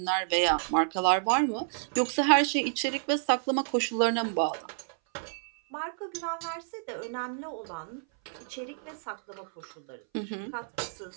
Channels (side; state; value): left; silent; 57 dB below the other